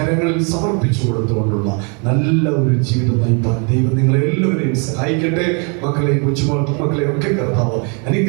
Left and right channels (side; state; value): left; quieter; 35.9 dB